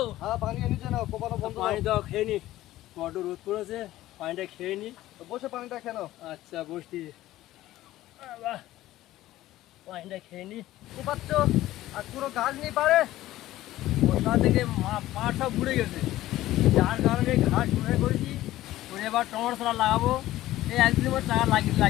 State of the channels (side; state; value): right; quieter; 15.3 dB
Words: হ্যাঁ পানি এনেছে না, কোপানো বন্ধ পানি করো। দাও, খেয়ে নি। বড্ড রোদ পড়েছে, পানিটা খেয়ে নি। বসে পানিটা কেন? আচ্ছা বসছি। বাহ, পানিটা খেয়ে নি। কোপাচ্ছ আর পুরো গাছ নেই পারে। বর্ষা থেকে পাট সব ঘুরে গেছে, যার কারণে ঘাস ঘুরে করেছি। করে এবার টমেটো চারা লাগাবো। এই একদিনের মধ্যে চারা